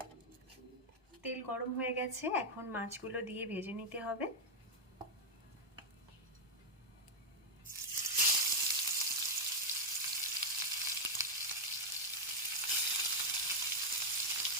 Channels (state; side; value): normal; both; correlation 0.00